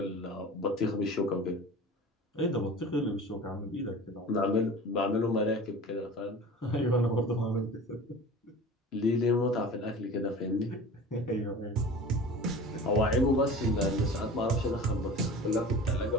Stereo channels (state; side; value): normal; both; correlation 0.38